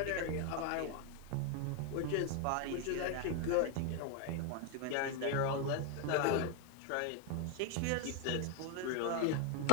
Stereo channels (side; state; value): both; different; correlation 0.01